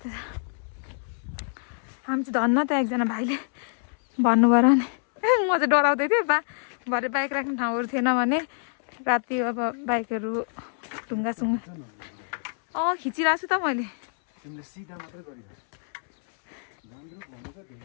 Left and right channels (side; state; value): right; silent; 61 dB below the other